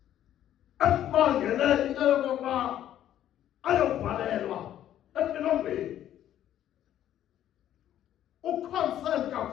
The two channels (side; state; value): right; quieter; 11.5 dB